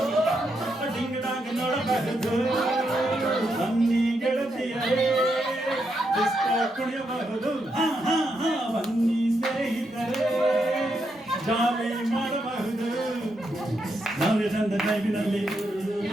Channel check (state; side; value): normal; both; correlation 0.81